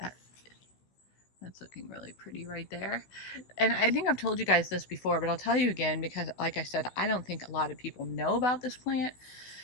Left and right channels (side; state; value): right; late; 16 ms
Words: That's looking really pretty right there. And I think I've told you guys this before, but I'll tell you again because, like I said, I don't think a lot of people know about this plant